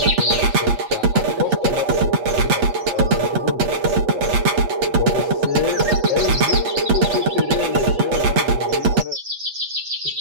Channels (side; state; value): left; late; 8.4 ms